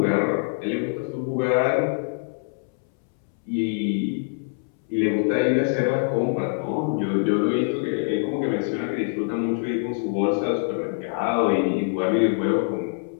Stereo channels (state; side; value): silent; right; 62 dB below the other